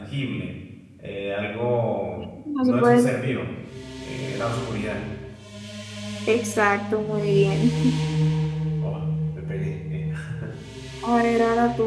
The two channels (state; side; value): identical; both; correlation 1.00